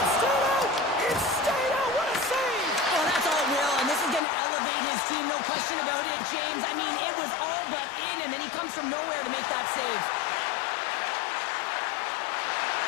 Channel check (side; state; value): right; drops out; at 4.2 s